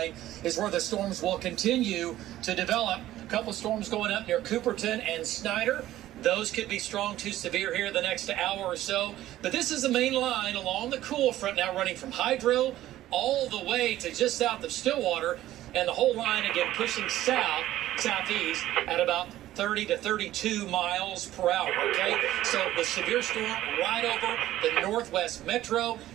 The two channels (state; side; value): quieter; left; 14.2 dB